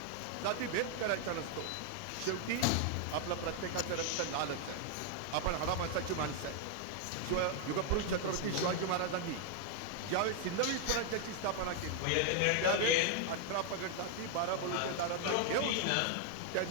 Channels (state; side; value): different; both; correlation 0.00